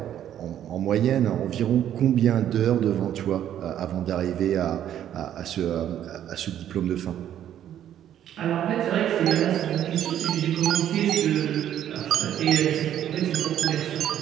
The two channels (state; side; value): quieter; left; 10.8 dB